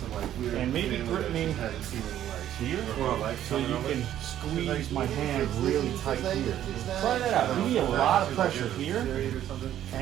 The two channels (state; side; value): quieter; left; 11.5 dB